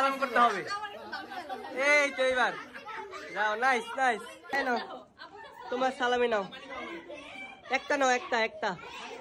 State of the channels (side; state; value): both; identical; correlation 1.00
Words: করতে হবে। এই তো এইবার যাও। Nice nice. নাও তোমার সালামি নাও, একটা নাও, একটা একটা।